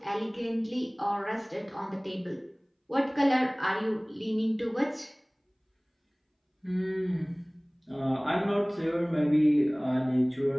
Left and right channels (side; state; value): both; identical; correlation 1.00